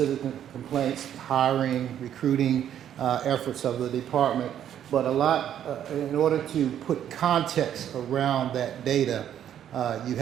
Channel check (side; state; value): left; quieter; 10.2 dB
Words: complaints, hiring, recruiting efforts of the department, but a lot, in order to put context around that data, you